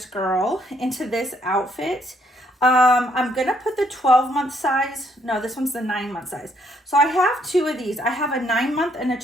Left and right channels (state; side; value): normal; both; correlation 0.69